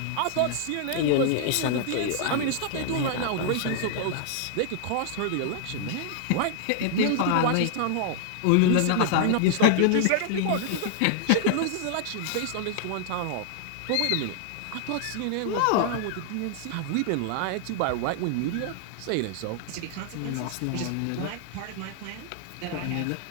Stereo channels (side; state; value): both; different; correlation -0.01